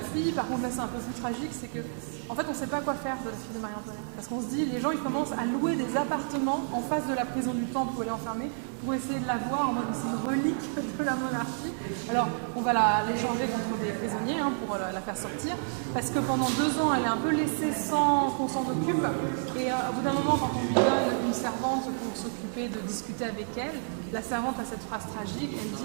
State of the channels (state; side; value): silent; left; digital silence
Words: par contre là c'est un peu plus tragique, c'est que en fait on ne sait pas quoi faire de la fille de Marie-Antoinette. Parce qu'on se dit, les gens ils commencent à louer des appartements en face de la prison du Temple où elle est enfermée pour essayer de la voir en mode c'est une relique de la monarchie. Alors on va l'échanger contre des prisonniers pour la faire sortir, parce que pendant 2 ans elle est un peu laissée sans qu'on s'en occupe, et au bout d'un moment quand on lui donne une servante pour s'occuper de discuter avec elle, la servante a cette phrase tragique, elle